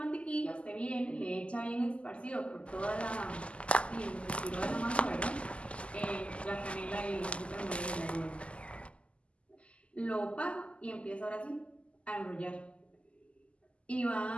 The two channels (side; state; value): right; late; 0.057 ms